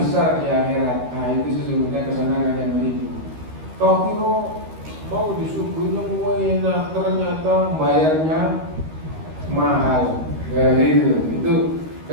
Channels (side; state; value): left; late; 13 ms